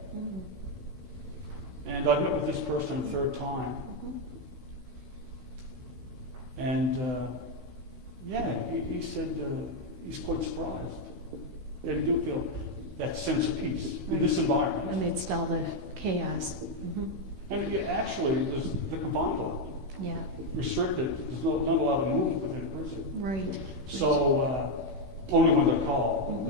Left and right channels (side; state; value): left; late; 16 ms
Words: And I've met with this person a third time. And he said he's quite surprised that he do feel that sense of peace in this environment. Amidst all the chaos. And actually, they're confined a lot, Yeah. restricted. There's not a lot of movement within prison. Right. So only when they're called,